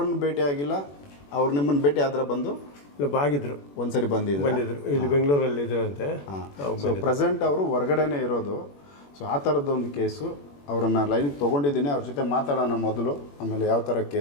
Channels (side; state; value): right; late; 21 ms